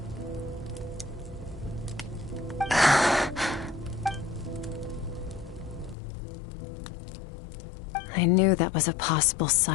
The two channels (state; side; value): drops out; right; at 6.0 s